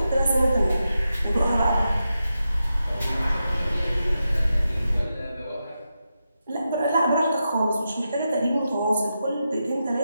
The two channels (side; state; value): both; inverted; correlation -0.88